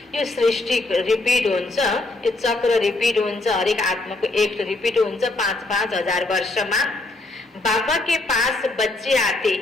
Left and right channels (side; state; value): right; quieter; 3.0 dB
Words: यो सृष्टि रिपिट हुन्छ, यो चक्र रिपिट हुन्छ, हरेक आत्माको एक रिपिट हुन्छ 5-5 हजार वर्षमा। बाबा के पास बच्चे आते